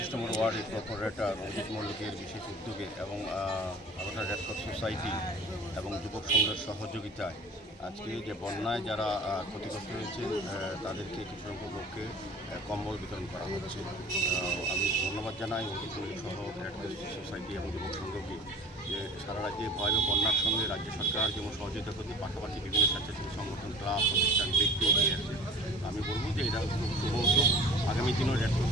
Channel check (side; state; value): both; normal; correlation 0.42